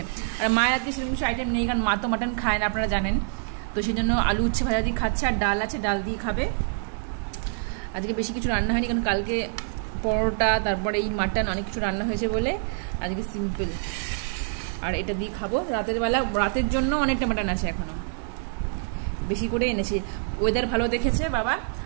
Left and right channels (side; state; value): left; silent; 61 dB below the other